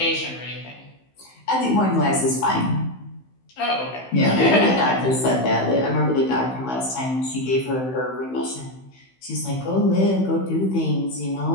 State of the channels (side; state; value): right; late; 16 ms